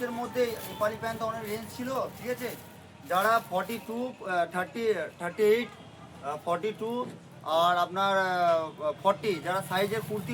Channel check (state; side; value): identical; both; correlation 1.00